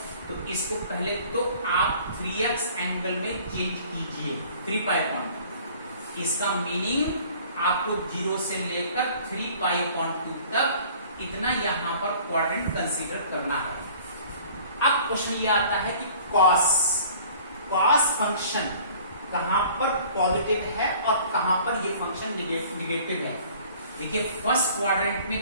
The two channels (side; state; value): both; inverted; correlation -0.50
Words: तो इसको पहले तो आप 3x एंगल में चेंज कीजिए 3 π/2। इसका मीनिंग आपको 0 से लेकर 3 π/2 तक इतना यहां पर क्वाड्रेंट कंसीडर करना है। अब क्वेश्चन ये आता है कि कॉस फंक्शन कहां पर पॉजिटिव है और कहां पर ये फंक्शन निगेटिव है। देखिए फर्स्ट क्वाड्रेंट में